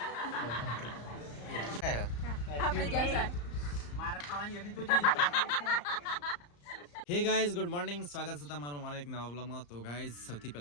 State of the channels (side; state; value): right; late; 34 ms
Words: આપણે જલસા. હે ગાઈઝ ગુડ મોર્નિંગ, સ્વાગત છે તમારું અમારા એક નવા વ્લોગમાં. તો ગાઈઝ સૌથી